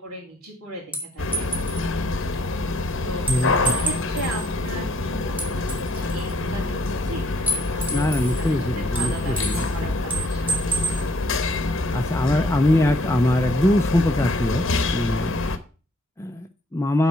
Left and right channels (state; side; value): normal; both; correlation 0.65